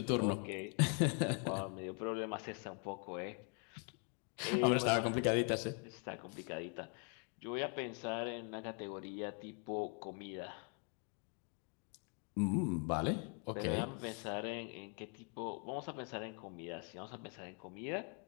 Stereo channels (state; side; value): quieter; right; 38.3 dB